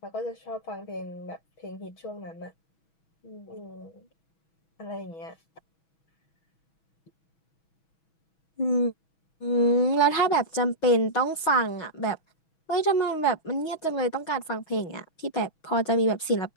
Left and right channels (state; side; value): late; right; 6.2 ms